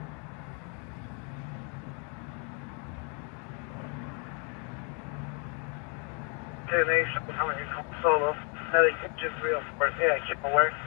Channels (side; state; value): right; quieter; 37.4 dB